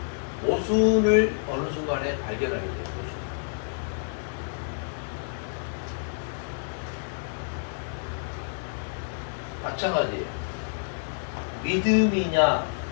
모순을 어느 순간에 발견하게 돼요. 모순. 마찬가지예요. 믿음이냐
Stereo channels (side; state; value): right; silent; digital silence